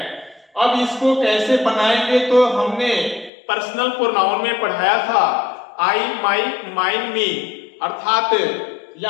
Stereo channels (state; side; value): drops out; right; at 3.3 s